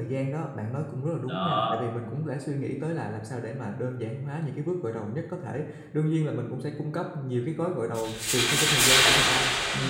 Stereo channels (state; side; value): identical; both; correlation 1.00